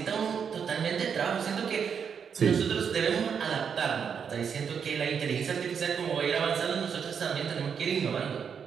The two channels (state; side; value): quieter; left; 7.0 dB